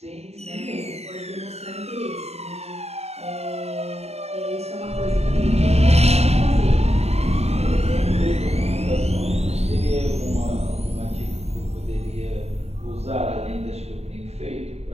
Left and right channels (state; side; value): late; left; 0.31 ms